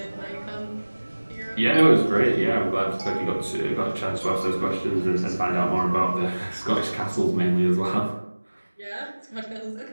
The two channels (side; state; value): both; inverted; correlation -1.00